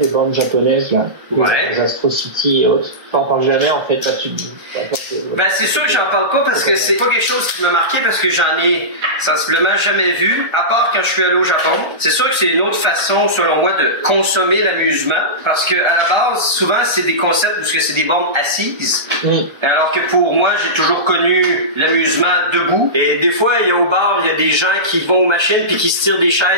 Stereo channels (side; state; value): left; late; 1.3 ms